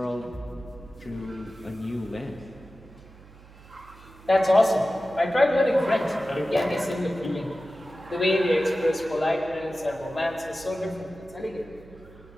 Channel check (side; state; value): right; noise; hum, 22 dB below the sound